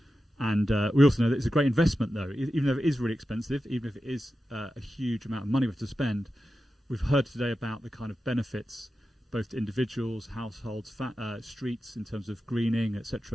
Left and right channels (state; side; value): normal; both; correlation 0.92